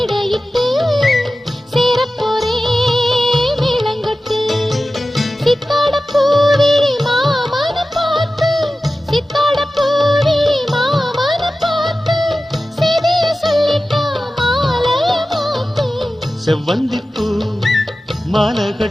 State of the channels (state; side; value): normal; both; correlation 0.95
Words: சேரப்போரே மேளங்கட்டு. சித்தாட பூவிழி மாமன பார்த்து சித்தாட பூவிழி மாமன பார்த்து செய்திய சொல்லிட்டா மாலைய மாத்து. செவ்வந்திப்பூ மாலை